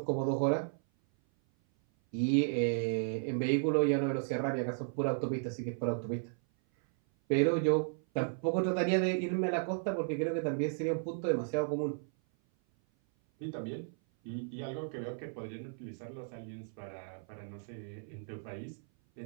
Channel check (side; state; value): left; silent; 55 dB below the other